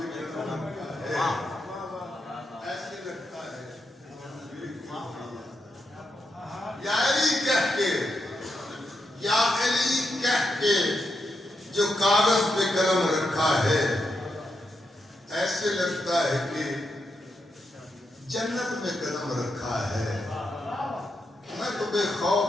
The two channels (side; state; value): both; normal; correlation 0.84